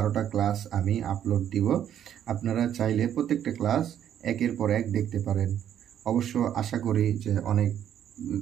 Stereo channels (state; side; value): quieter; left; 10.1 dB